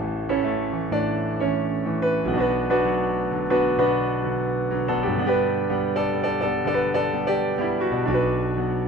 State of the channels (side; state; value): both; normal; correlation 0.56